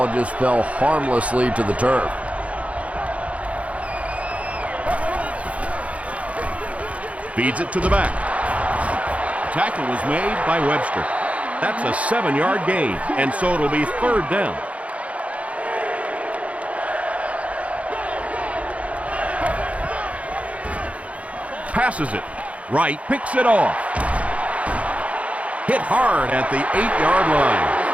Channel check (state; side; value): late; left; 0.065 ms